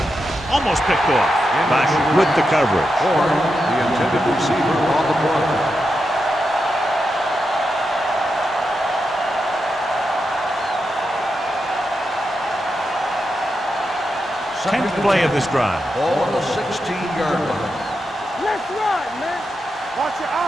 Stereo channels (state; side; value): normal; both; correlation 0.87